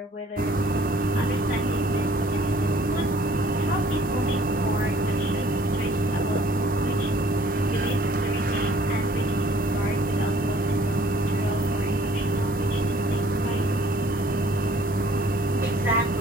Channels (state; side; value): normal; both; correlation 0.57